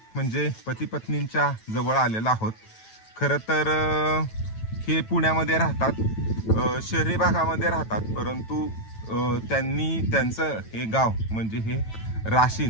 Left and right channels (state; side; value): late; right; 9.1 ms